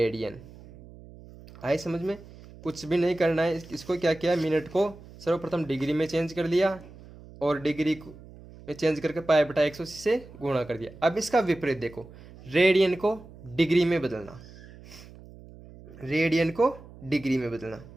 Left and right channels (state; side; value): noise; right; hum, 19 dB below the sound